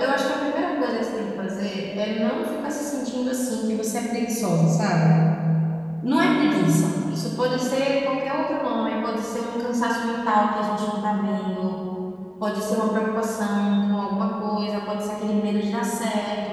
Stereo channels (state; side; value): identical; both; correlation 1.00